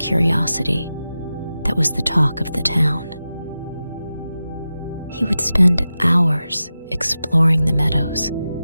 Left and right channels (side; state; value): both; inverted; correlation -0.93